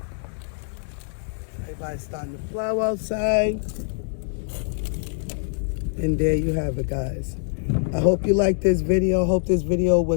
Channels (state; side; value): silent; right; digital silence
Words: Everybody's starting to plow outside. And there you have it, guys. I hope you liked this video. I hope this video